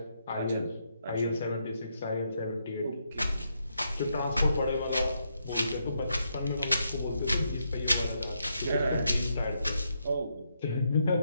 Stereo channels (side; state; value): both; inverted; correlation -0.79